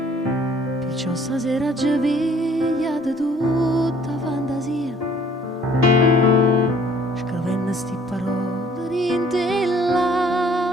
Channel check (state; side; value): normal; both; correlation 0.57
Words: Perciò stasera ci piglia di tutta fantasia, scrivendo sti parole rinte